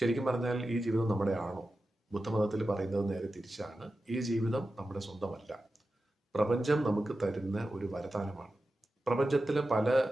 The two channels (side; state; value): both; normal; correlation 0.92